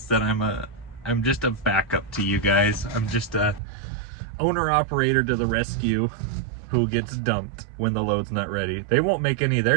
that I'm just a backup to you guys. I'm just a owner operator to the rescue who gets dumped when the load's not ready. They won't make any of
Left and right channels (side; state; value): left; drops out; at 3.6 s